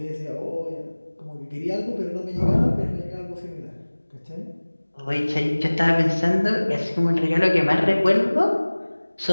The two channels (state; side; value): inverted; both; correlation -1.00